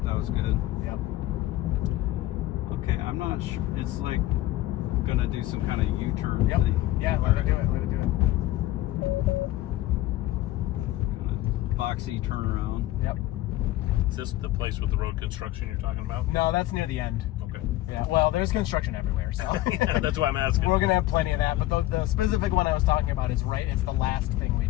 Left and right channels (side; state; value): right; quieter; 15.8 dB